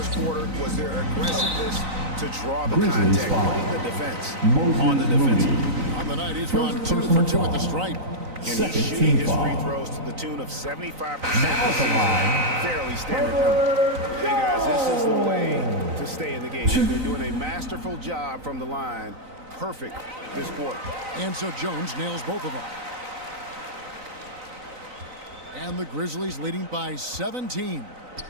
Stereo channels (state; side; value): late; left; 3.9 ms